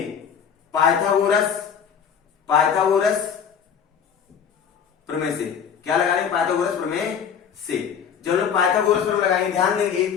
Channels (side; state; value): right; quieter; 7.5 dB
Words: पाइथागोरस प्रमेय से क्या लगाएंगे, पाइथागोरस प्रमेय से। जब हम पाइथागोरस प्रमेय लगाएंगे, ध्यान